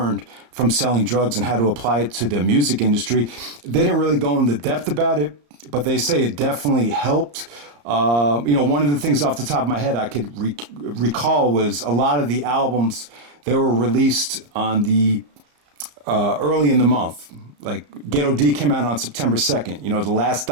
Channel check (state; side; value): late; left; 34 ms